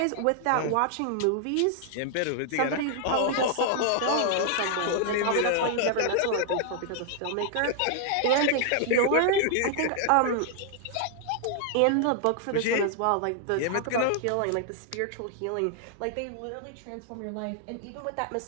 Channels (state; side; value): different; both; correlation 0.00